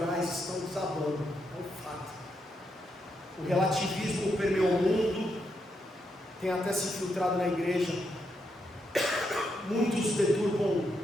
estão desabando. É um fato. O relativismo permeou o mundo, tem até se infiltrado na igreja. Muitos deturpam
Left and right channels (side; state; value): both; normal; correlation 0.81